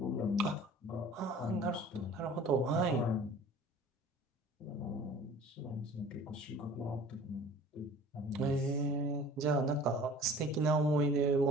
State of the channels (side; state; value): both; normal; correlation 0.46